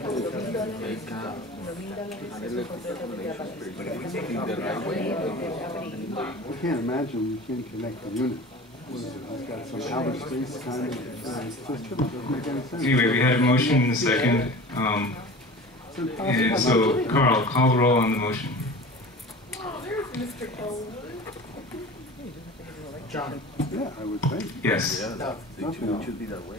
I can't imagine you can't connect the unit. What is it? It's got some outer space kind of system. It doesn't make any sense. Anyway, we had a motion and a second. And so, Carl, call the roll on the motion. John. Yeah, I would think. Yes. Yeah, it should be that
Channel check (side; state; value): both; normal; correlation 0.37